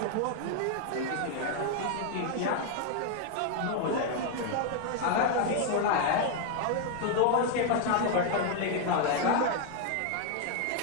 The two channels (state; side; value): different; both; correlation 0.00